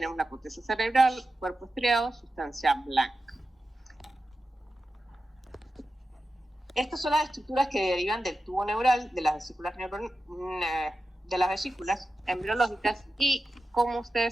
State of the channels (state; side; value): normal; both; correlation 0.92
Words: la corteza cerebral, cuerpo estriado, sustancia blanca. Estas son las estructuras que derivan del tubo neural, de las vesículas embriológicas. Y como